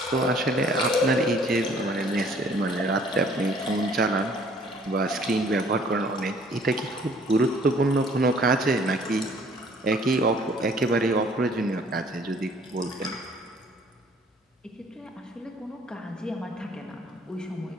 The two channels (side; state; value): both; normal; correlation 0.57